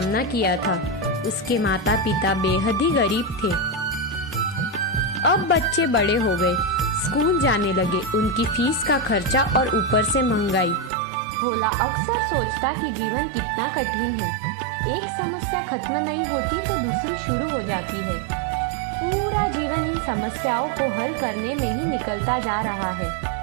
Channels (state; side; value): drops out; left; at 10.9 s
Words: किया था। उसके माता पिता बेहद ही गरीब थे। अब बच्चे बड़े हो गए, स्कूल जाने लगे, उनकी फीस का खर्चा और ऊपर से महंगाई। भोला अक्सर सोचता कि जीवन कितना कठिन है। एक समस्या खत्म नहीं होती तो दूसरी शुरू हो जाती है। पूरा जीवन इन समस्याओं को हल करने में ही निकलता जा रहा है।